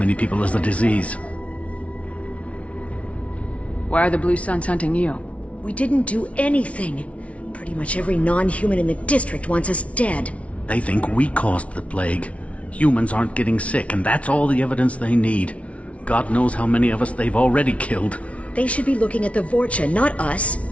people as the disease. Why are the Blue Suns hunting you? We didn't do anything. Pretty much every non-human in the district wants us dead. They think we caused the plague. Humans aren't getting sick, and that's all the evidence they need. God knows how many of us they've already killed. They should be looking at the Vorcha, not us.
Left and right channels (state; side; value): late; right; 0.064 ms